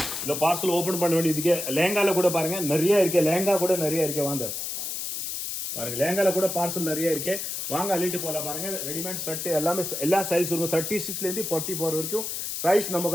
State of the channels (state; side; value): noise; left; hiss, 4 dB below the sound